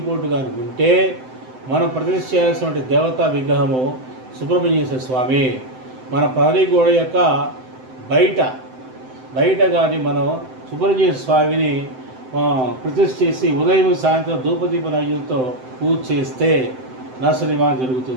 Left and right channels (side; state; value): left; late; 7.8 ms